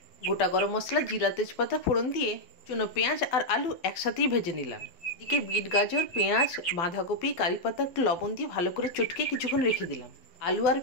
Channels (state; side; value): late; right; 11 ms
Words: গোটা গরম মশলা, জিরা, তেজপাতা ফোড়ন দিয়ে চুনো পেঁয়াজ আর আলু একসাথেই ভেজে নিলাম। এদিকে বিট, গাজর, পেঁয়াজ, বাঁধাকপি, কারিপাতা একটু লবণ দিয়ে ভালো করে চটকে কিছুক্ষণ রেখে দিলাম। আলু আর